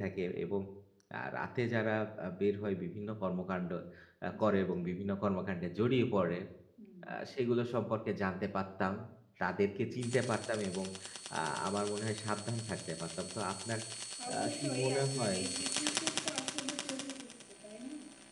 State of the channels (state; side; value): identical; both; correlation 1.00